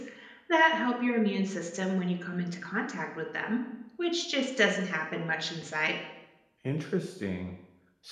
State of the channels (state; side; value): identical; both; correlation 1.00